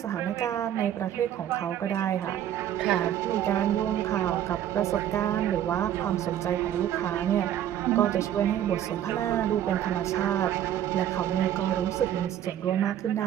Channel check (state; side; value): quieter; left; 11.0 dB